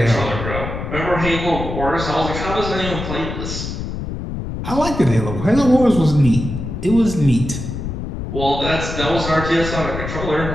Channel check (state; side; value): noise; left; rumble, 6 dB below the sound